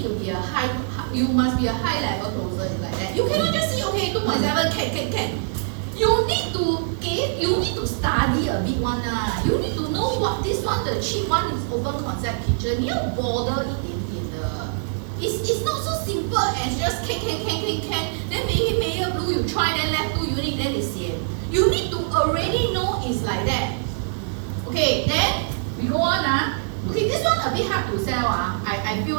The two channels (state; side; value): silent; left; digital silence